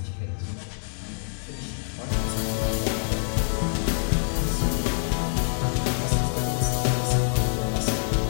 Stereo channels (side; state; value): right; silent; digital silence